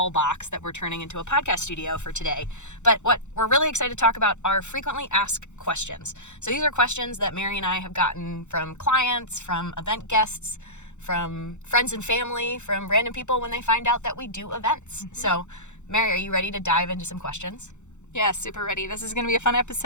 box that we're turning into a podcast studio for today. But what we're really excited to talk about are frequently asked questions. So these are questions that Mary and I have gotten from clients, from event guests, from friends and family, from random people when they find out that we do events. Mm-hmm. So, Mary, are you ready to dive into some questions? Yeah, super ready. This is going to be a fun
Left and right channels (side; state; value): right; late; 0.83 ms